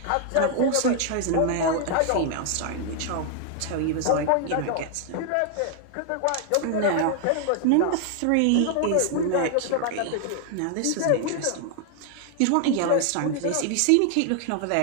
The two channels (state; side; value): different; both; correlation 0.00